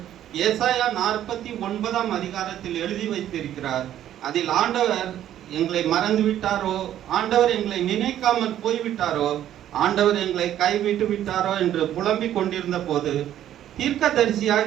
ஏசாயா 49 அதிகாரத்தில் எழுதி வைத்திருக்கிறார். அதில் ஆண்டவர் எங்களை மறந்து விட்டாரோ, ஆண்டவர் எங்களை நினைக்காமல் போய்விட்டாரோ, ஆண்டவர் எங்களை கைவிட்டு விட்டாரோ என்று புலம்பிக் கொண்டிருந்த போது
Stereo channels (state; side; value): quieter; left; 11.5 dB